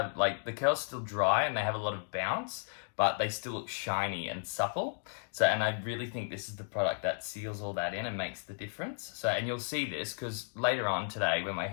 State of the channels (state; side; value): silent; right; digital silence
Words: like, the curls still dry and they have a lot of bounce, but they still look shiny and supple. So, and I really think this is the product that seals all that in and makes the difference. So, and you'll see this because later on today, when my